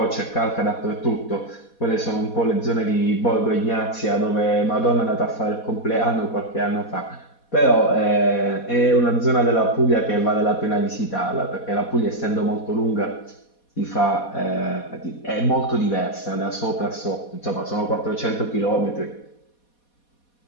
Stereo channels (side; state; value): right; late; 4.2 ms